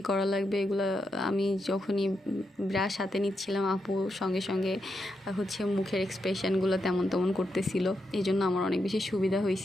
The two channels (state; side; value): normal; both; correlation 0.84